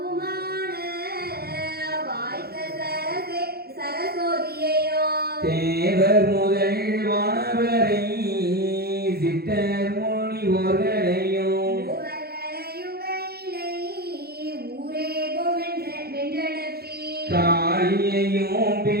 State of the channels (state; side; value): late; left; 0.46 ms